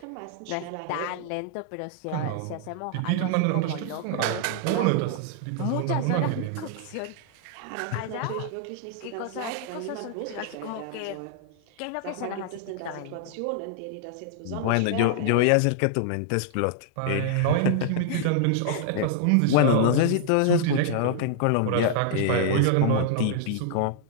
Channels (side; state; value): both; different; correlation -0.01